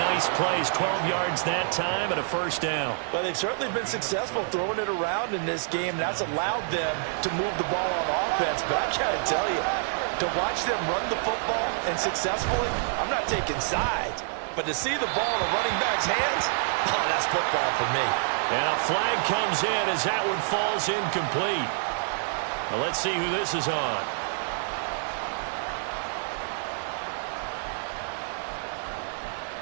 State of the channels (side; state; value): left; silent; digital silence